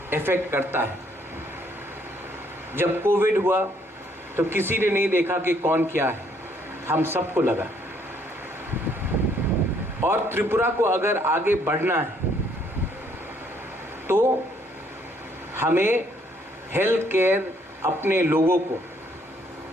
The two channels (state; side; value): normal; both; correlation 0.67